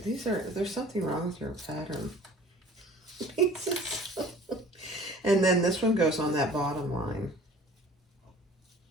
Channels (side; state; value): both; normal; correlation 0.48